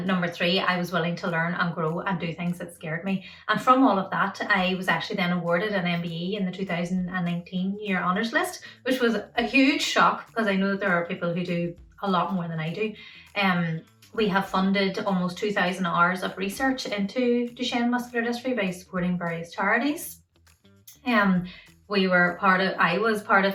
number three, I was willing to learn and grow and do things that scared me. And from all of that, I was actually then awarded an MBE in the 2019 year honours list, which was a huge shock because I know that there are people who do a lot more than I do. We have funded almost 2,000 hours of research into Duchenne muscular dystrophy by supporting various charities. I was part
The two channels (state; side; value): identical; both; correlation 1.00